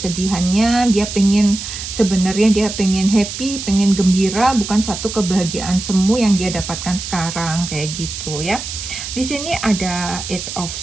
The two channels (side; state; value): right; noise; hiss, 7 dB below the sound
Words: sebenarnya dia pengen happy, pengen gembira, bukan satu kebahagiaan semu yang dia dapatkan sekarang, kayak gitu ya. Di sini ada Eight of